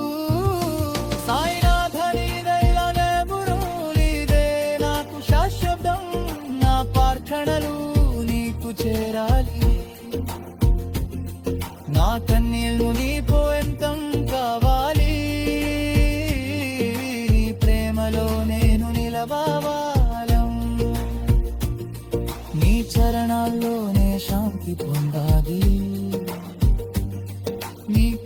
సాయినాథ నీదైలనే బురులీదే నాకు శాశ్వతం, నా ప్రార్థనలు నీకు చేరాలి. నా కన్నీళ్ళు నీ పోయంతం కావాలి, నీ ప్రేమలో నేను నిలవాలం. నీ చరణాల్లోనే శాంతి పొందాలి. నీ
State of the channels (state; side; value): identical; both; correlation 1.00